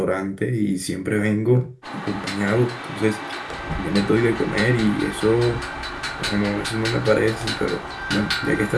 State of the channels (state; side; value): identical; both; correlation 1.00